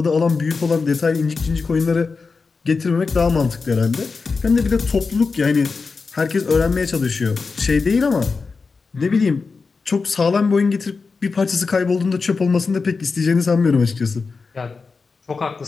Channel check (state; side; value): quieter; right; 4.6 dB